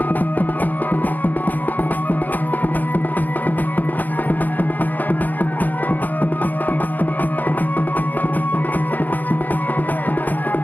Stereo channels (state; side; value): late; right; 0.084 ms